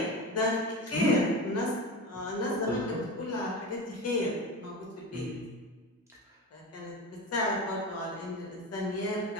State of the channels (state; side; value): normal; both; correlation 0.26